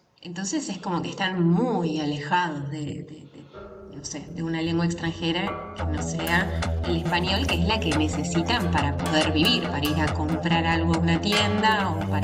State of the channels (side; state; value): both; identical; correlation 1.00